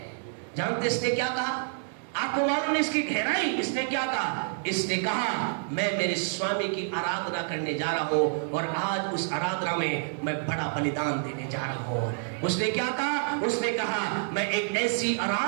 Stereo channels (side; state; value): left; silent; 59 dB below the other